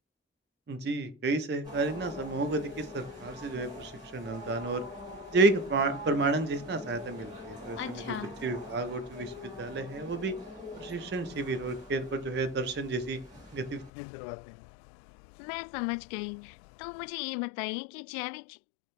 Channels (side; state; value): right; drops out; at 13.9 s